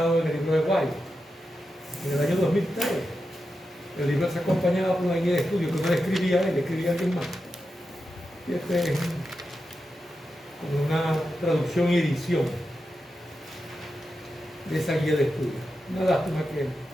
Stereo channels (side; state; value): both; normal; correlation 0.89